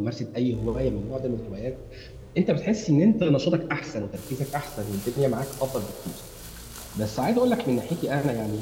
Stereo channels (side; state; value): both; identical; correlation 1.00